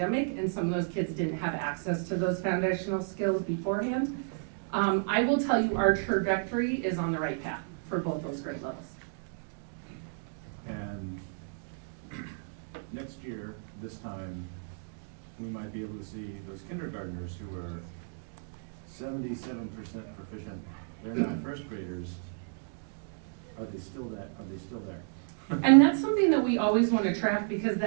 and some of those kids didn't have access to those foundational skills beforehand. I will tell you our trajectory is on the right path for both those grade levels. And next year, this time, we might be able to see those kindergartners who are 77% proficient. They're not first graders. Are they still there? And that's something that we always want to track, because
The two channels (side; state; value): left; silent; digital silence